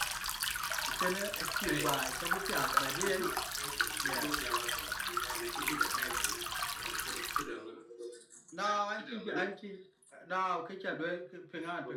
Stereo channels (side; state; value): both; identical; correlation 1.00